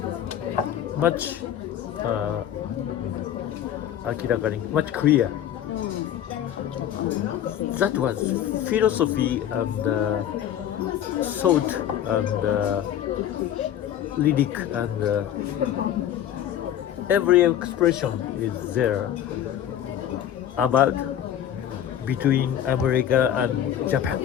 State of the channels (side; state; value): right; quieter; 10.6 dB